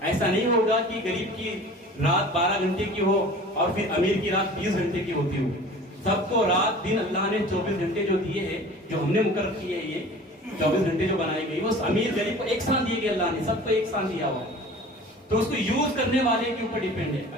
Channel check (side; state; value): both; normal; correlation 0.42